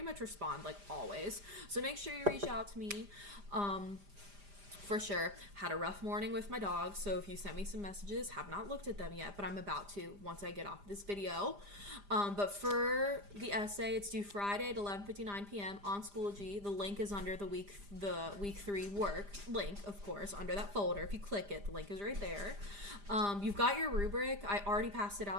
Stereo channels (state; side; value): late; left; 5.0 ms